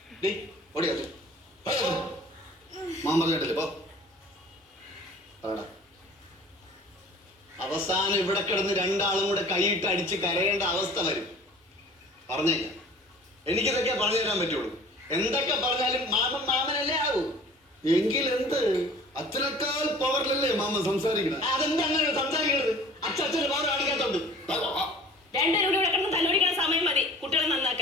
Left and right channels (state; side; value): normal; both; correlation 0.46